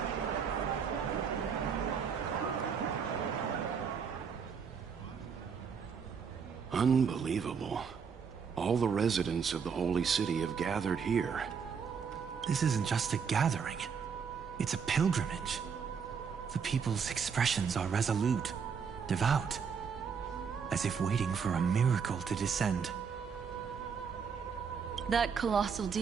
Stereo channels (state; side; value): quieter; left; 6.4 dB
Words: Unbelievable. All the residents of the Holy City have gathered here. This isn't just a gathering. It's a pilgrimage. The people's expressions are resolute, devout, as if waiting for a miracle to descend. That colossal